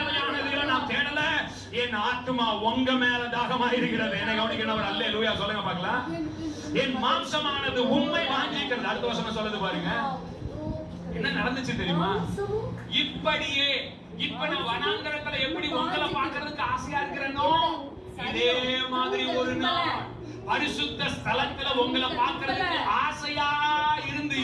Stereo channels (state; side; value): identical; both; correlation 1.00